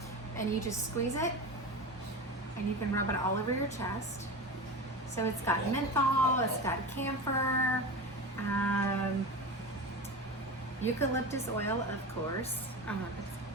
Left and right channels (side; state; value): both; normal; correlation 0.27